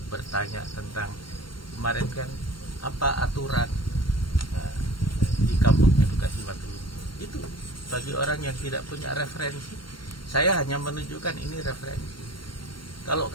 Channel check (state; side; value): late; right; 0.72 ms